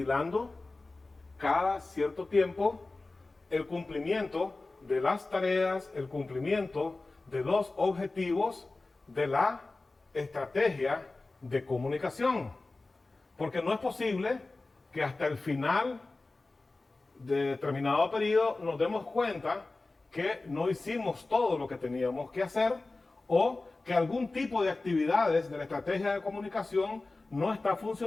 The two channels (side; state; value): right; quieter; 3.3 dB